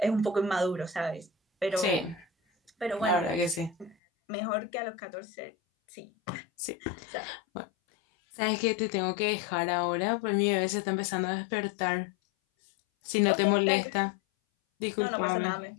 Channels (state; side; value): drops out; right; at 4.0 s